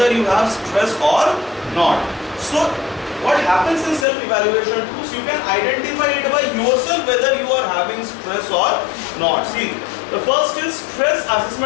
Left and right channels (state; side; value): drops out; right; at 4.0 s